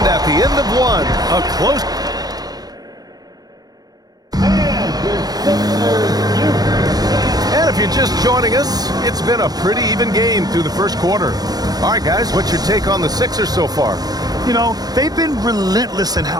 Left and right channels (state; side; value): late; left; 0.19 ms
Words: at the end of one, a close. And if you're just joining us, it's been a pretty even game through the first quarter. All right, guys, what's your take on the Sixers so far? You know, they've been relentless in